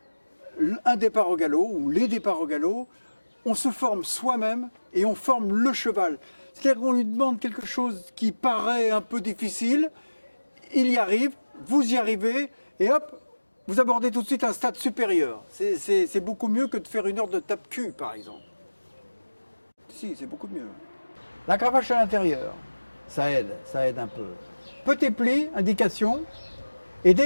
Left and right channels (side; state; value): both; inverted; correlation -1.00